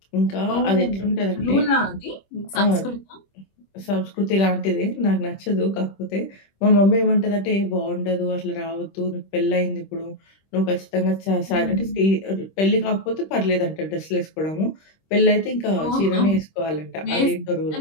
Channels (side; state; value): right; late; 26 ms